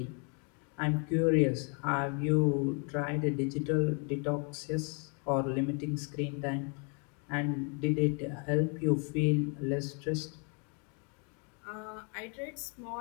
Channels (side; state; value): right; quieter; 37.2 dB